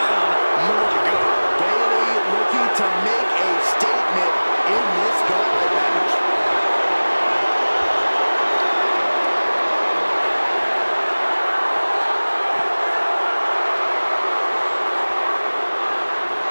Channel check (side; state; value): both; inverted; correlation -1.00